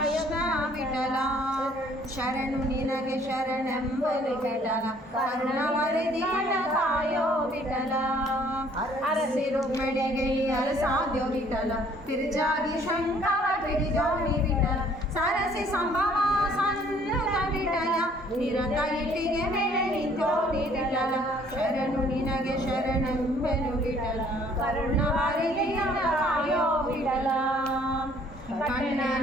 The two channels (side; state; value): both; normal; correlation 0.59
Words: ವಿಠಲ ಶರಣು ನಿನಗೆ ಶರಣೆಂಬಲು ವಿಠಲ ಕರುಣವರಿದಿಯ ಕಾಯೋ ವಿಠಲ ಅರಸಿ ರುಕ್ಮಿಣಿಗೆ ಅರಸಾದ್ಯೋ ವಿಠಲ ತಿರುಜಾಗಿ ಶಂಕರ ಪಿಡಿಜೋಣಿ ವಿಠಲ ಸರಸಿ ಸಂಭವ ಸನ್ನುತ ವಿಠಲ ನಿರತ ಇಟ್ಟಿಗೆ ಮೇಲೆ ನಿಂತೋಣಿ ವಿಠಲ ಶರಣು ನಿನಗೆ ಶರಣೆಂಬೆನು ವಿಠಲ ಕರುಣವರಿದಿಯ ಕಾಯೋ ವಿಠಲ ಕಣ್ಣನ